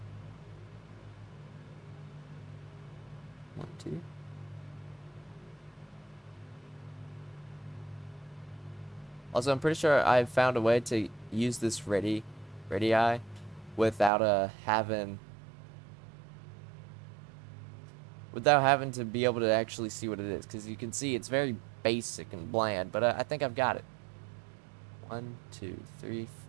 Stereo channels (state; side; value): drops out; left; at 14.1 s